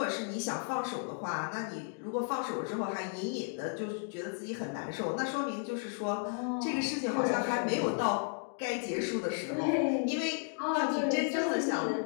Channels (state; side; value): silent; right; 55 dB below the other